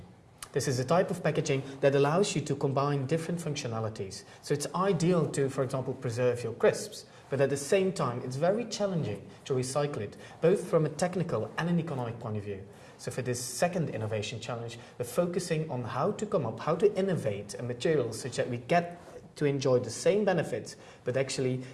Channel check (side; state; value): both; identical; correlation 1.00